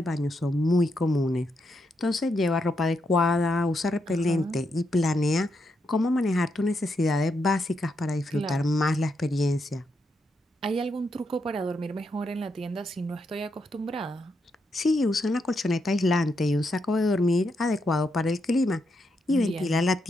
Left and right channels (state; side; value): normal; both; correlation 0.81